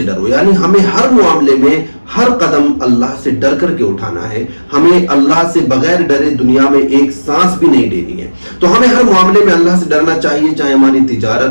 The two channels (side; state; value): both; inverted; correlation -1.00